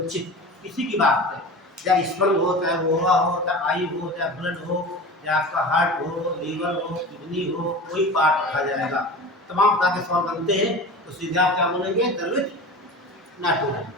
किसी की बात है, चाहे स्पर्म हो, चाहे वोहा हो, चाहे आई हो, चाहे ब्लड हो, चाहे आपका हार्ट हो, लीवर हो, किडनी हो, कोई पार्ट रखा जाएगा, तमाम तरह के सवाल बनते हैं, तो सीधे आप क्या बोलेंगे? द्रवित नाइट्रोजन।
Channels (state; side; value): normal; both; correlation 0.33